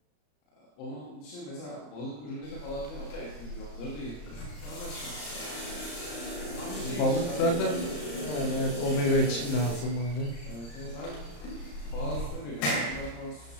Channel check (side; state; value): right; late; 34 ms